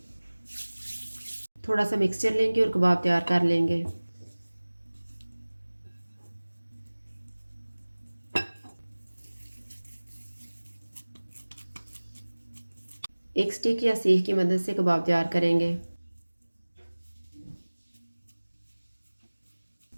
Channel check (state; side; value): inverted; both; correlation -1.00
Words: थोड़ा सा मिक्सचर लेंगे और कबाब तैयार कर लेंगे। एक स्टिक या सीख की मदद से कबाब तैयार करेंगे।